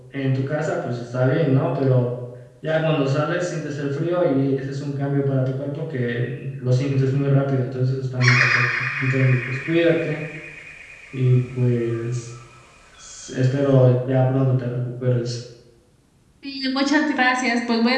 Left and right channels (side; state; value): both; identical; correlation 1.00